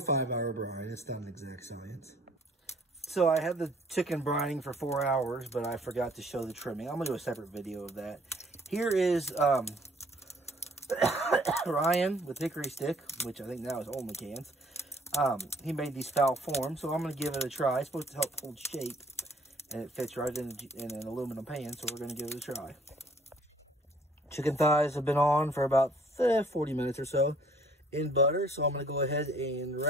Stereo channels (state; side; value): normal; both; correlation 0.59